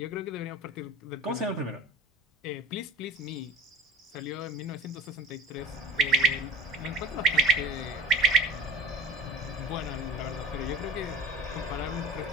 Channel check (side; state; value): both; normal; correlation 0.36